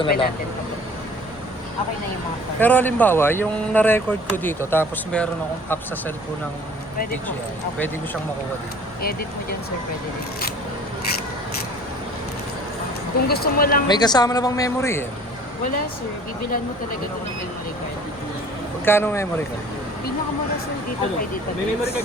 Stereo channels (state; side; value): normal; both; correlation 0.49